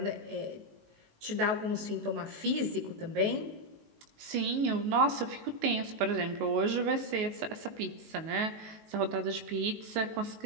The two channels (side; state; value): left; late; 19 ms